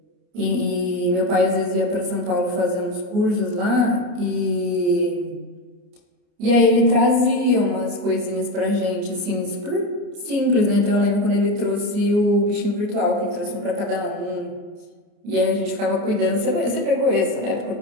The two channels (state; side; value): late; left; 29 ms